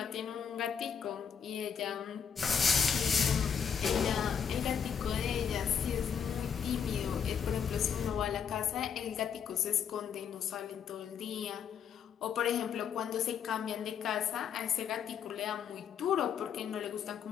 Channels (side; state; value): right; quieter; 7.4 dB